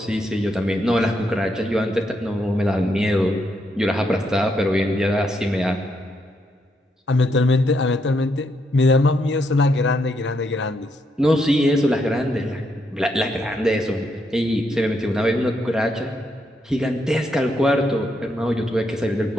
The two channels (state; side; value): normal; both; correlation 0.78